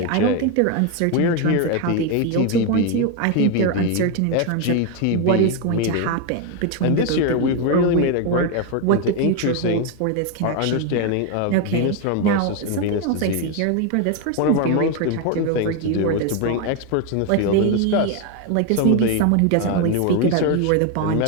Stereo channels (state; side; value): different; both; correlation 0.01